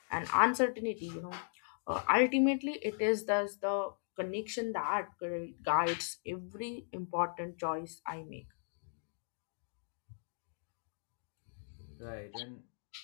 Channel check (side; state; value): right; silent; digital silence